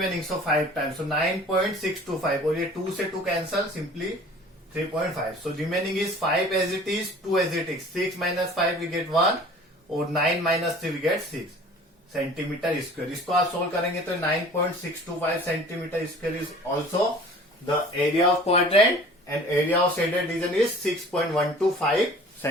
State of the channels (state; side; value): normal; both; correlation 0.46